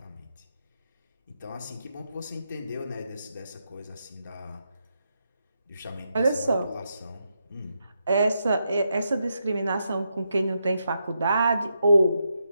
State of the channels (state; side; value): inverted; both; correlation -0.83